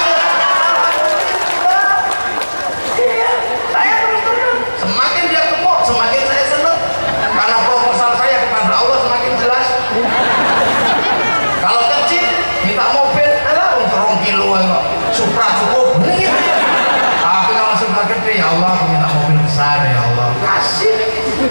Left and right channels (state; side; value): inverted; both; correlation -1.00